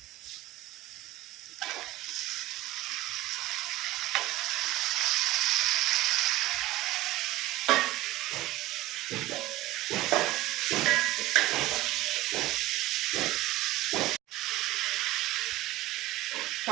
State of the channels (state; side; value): quieter; left; 17.4 dB